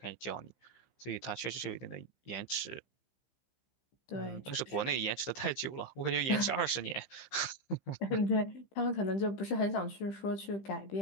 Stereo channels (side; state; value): right; late; 15 ms